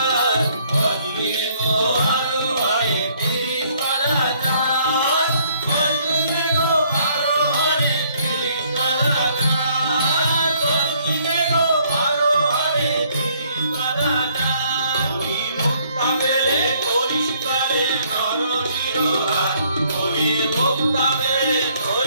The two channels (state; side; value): inverted; both; correlation -0.65